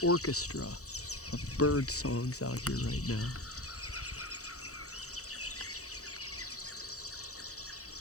orchestra of bird songs out here right now.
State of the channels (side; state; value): right; late; 0.65 ms